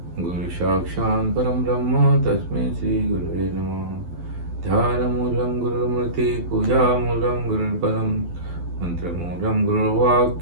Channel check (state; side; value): late; left; 12 ms